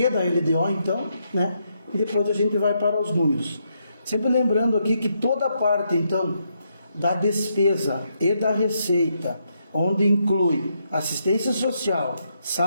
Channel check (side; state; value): both; inverted; correlation -0.78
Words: da LDO, então, né? E depois a gente vai para os números. Sempre lembrando aqui que toda a parte, então, da despesa e da receita, onde inclui assistência social,